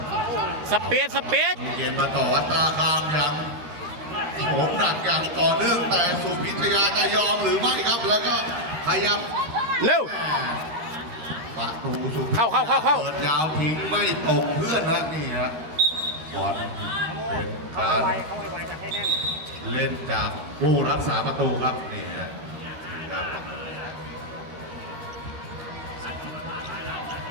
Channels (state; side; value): late; left; 13 ms